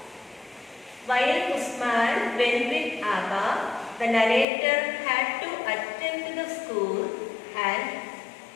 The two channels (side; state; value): right; drops out; at 4.5 s